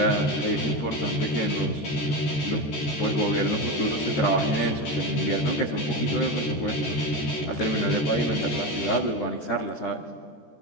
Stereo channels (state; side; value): late; right; 14 ms